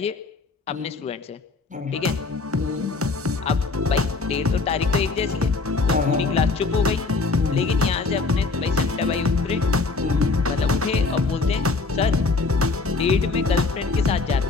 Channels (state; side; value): quieter; right; 3.9 dB